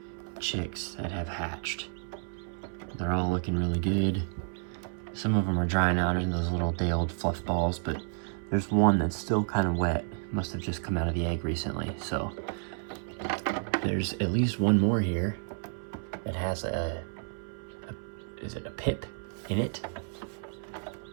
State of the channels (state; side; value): silent; left; 57 dB below the other